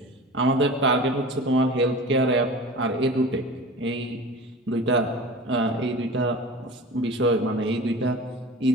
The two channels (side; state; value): both; normal; correlation 0.36